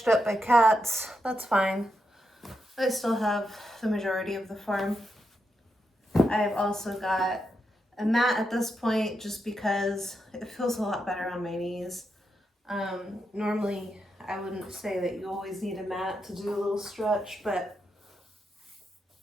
up by cats, that's fine. I still have the majority of the farm. I've also got a mat at this point just because it feels a lot better on my knees. Normally I wouldn't say that you always need a mat to do a little stretch, but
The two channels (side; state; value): both; normal; correlation 0.84